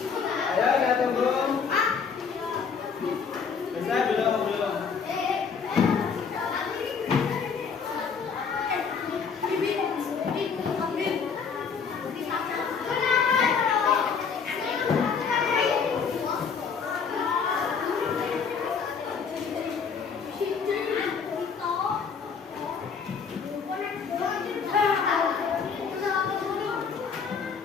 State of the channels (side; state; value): right; quieter; 6.0 dB